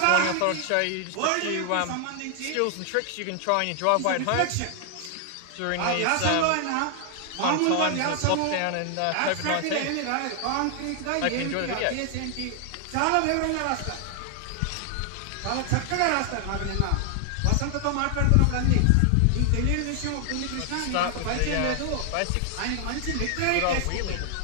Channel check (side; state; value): both; different; correlation 0.00